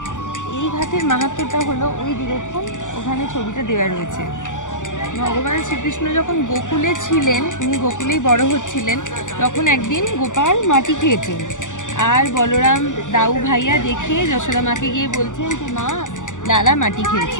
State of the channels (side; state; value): right; late; 0.87 ms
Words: এই ঘাটের মাহাত্ম্যটা হলো ওই দেখুন ওখানে ছবিটা দেওয়া রয়েছে। ভগবান শ্রীকৃষ্ণ যখন গোকুলে ছিলেন, উনি গোকুলেই বড় হচ্ছিলেন, তখন একদিন গোপাল মাটি খেয়েছেন। আর বলরাম দাউ ভাইয়া দেখে যশোদা মাকে গিয়ে বলছেন যে মা, লালা মাটি